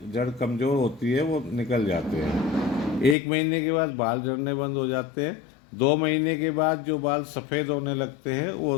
जड़ कमज़ोर होती है वो निकल जाते हैं। 1 महीने के बाद बाल झड़ने बंद हो जाते हैं। 2 महीने के बाद जो बाल सफ़ेद होने लगते हैं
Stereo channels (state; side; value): drops out; right; at 3.2 s